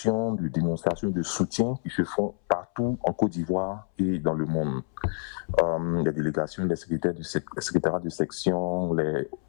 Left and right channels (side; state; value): right; silent; 60 dB below the other